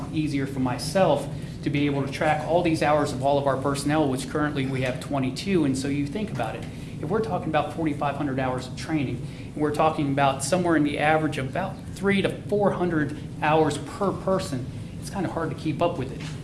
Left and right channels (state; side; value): identical; both; correlation 1.00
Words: easier for myself to be able to track all these hours of all of our personnel, which currently we have 22, and so you think about it. If we're talking about 4,500 hours of training, and we're talking about somewhere in the average of about 300 to 400 hours per person, it's kind of hard to keep up with it.